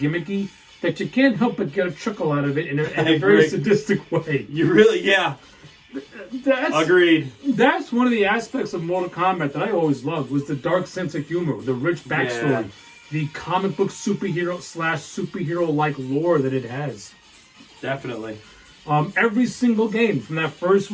that you can't help but get a chuckle out of it in a very sadistic way. You really, yeah. Agreed. That's one of the aspects of Mortal Kombat that I always loved, was the dark sense of humor, the rich backstory, the comic book superhero/superhero-like lore that it has. Definitely. Every single game from that first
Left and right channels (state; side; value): identical; both; correlation 1.00